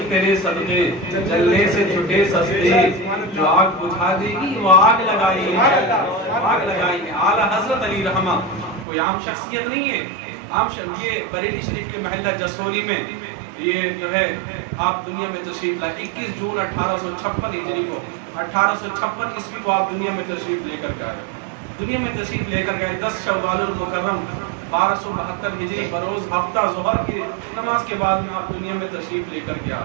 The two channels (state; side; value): drops out; left; at 8.8 s